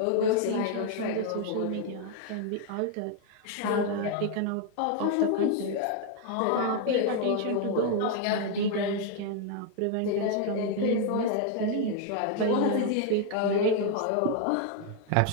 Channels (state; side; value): different; both; correlation 0.00